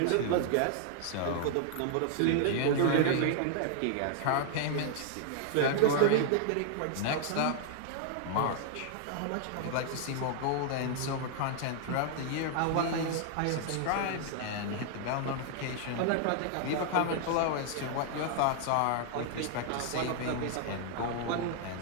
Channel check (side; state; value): both; different; correlation -0.01